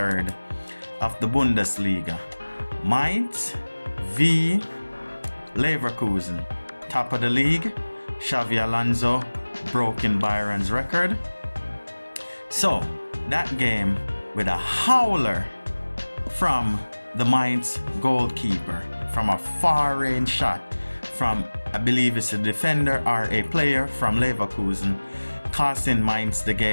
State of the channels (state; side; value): inverted; both; correlation -1.00